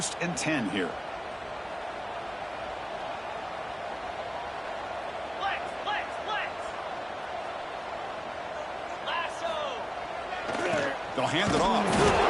and 10 here. They'll hand it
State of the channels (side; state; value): both; identical; correlation 1.00